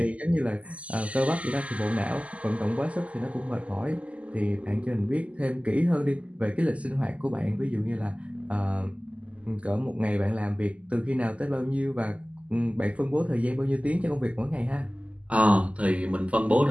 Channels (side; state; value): left; late; 0.065 ms